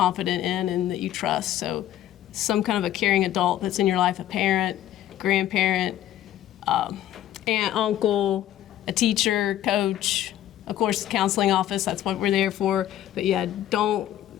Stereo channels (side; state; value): right; quieter; 12.3 dB